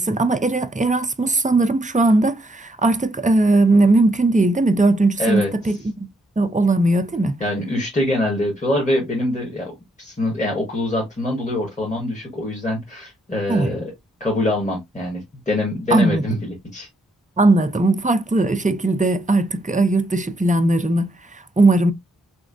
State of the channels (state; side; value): normal; both; correlation 0.76